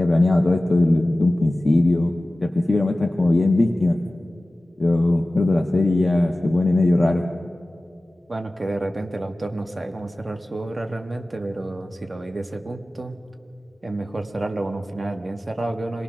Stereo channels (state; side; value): normal; both; correlation 0.97